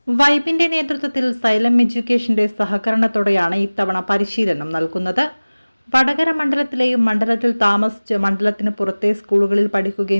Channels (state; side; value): inverted; both; correlation -1.00